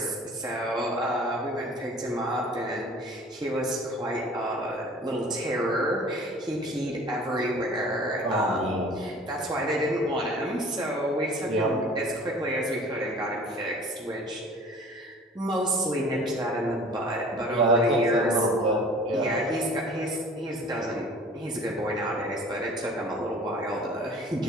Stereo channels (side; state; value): both; normal; correlation 0.46